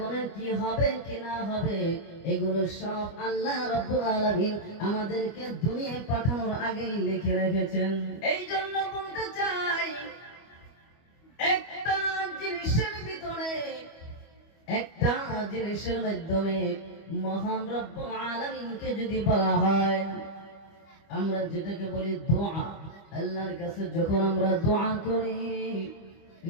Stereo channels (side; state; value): right; late; 25 ms